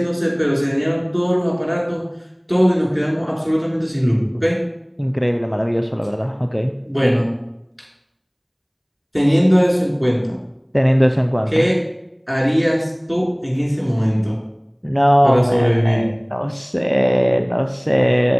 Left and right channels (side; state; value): both; identical; correlation 1.00